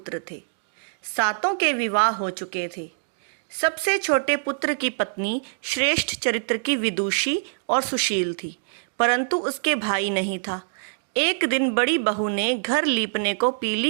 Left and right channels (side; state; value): left; silent; digital silence